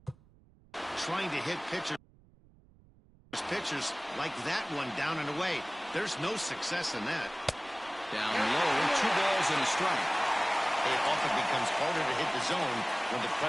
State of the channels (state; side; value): noise; right; rumble, 27 dB below the sound